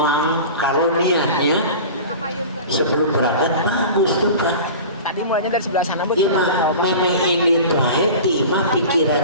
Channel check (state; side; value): inverted; both; correlation -0.35